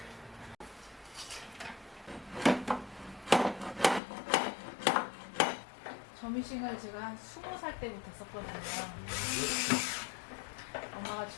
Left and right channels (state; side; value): drops out; right; at 4.0 s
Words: 점이싱을 제가 한 20살 때부터 썼거든요. 엄마가